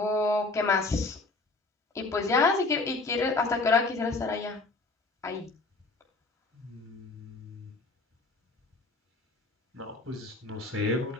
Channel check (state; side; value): quieter; right; 3.4 dB